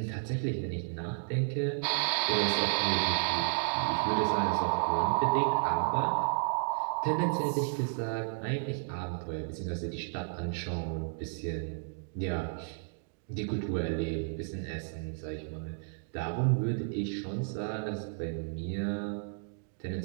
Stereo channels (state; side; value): silent; left; digital silence